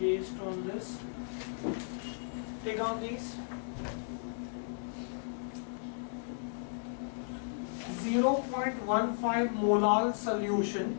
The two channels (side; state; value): right; silent; digital silence